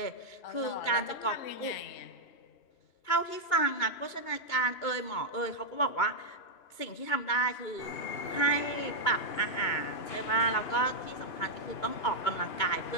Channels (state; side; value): late; right; 2.3 ms